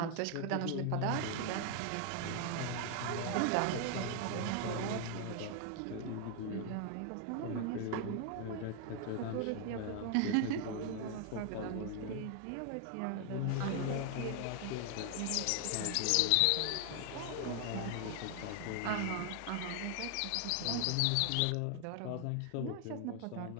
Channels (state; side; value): different; both; correlation 0.00